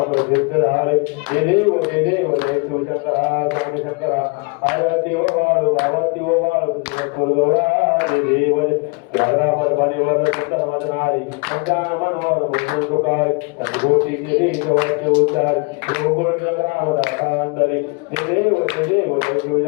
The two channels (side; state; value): right; quieter; 30.8 dB